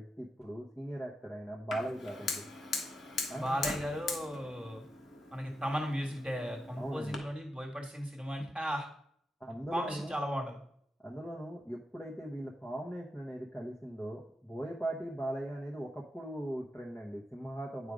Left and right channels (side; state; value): both; normal; correlation 0.87